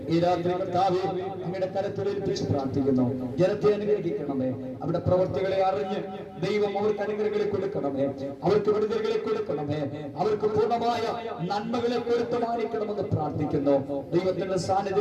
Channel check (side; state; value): both; identical; correlation 1.00